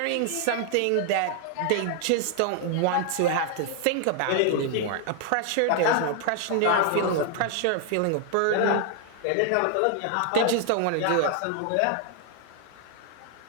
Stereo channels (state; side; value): different; both; correlation 0.00